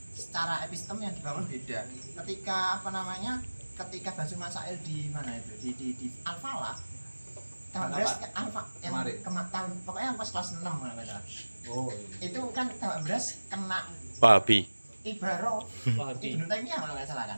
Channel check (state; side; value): inverted; both; correlation -1.00